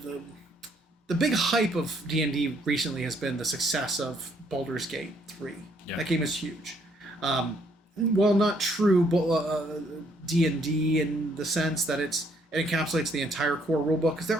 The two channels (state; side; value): normal; both; correlation 0.68